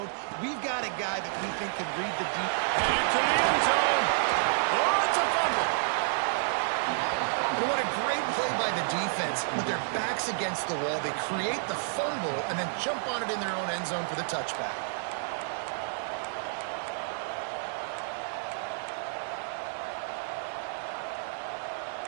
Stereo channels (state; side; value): silent; left; digital silence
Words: We've got a guy that we think can read the deep. Headed to the end zone. Oh, it's a fumble. And what a great play by the defense. With their backs against the wall, they create the fumble and then jump on it in their own end zone for the touchback.